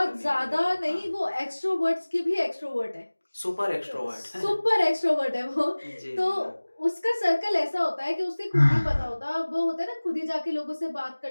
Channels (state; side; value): inverted; both; correlation -1.00